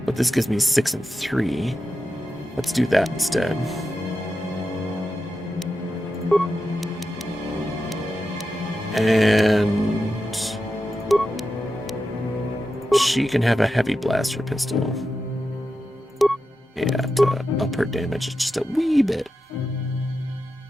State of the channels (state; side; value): normal; both; correlation 0.90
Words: But this gives me 6 and 3. Let's do that instead. And she can have a heavy blaster pistol. Yeah, to up her damage just a wee bit.